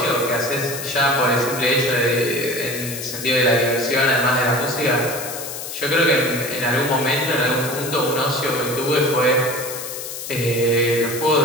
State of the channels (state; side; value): noise; left; hiss, 8 dB below the sound